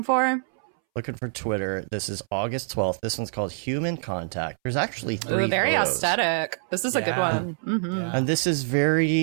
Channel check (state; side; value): silent; left; 61 dB below the other